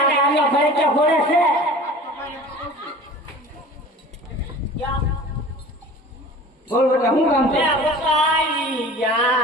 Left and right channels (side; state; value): both; normal; correlation 0.41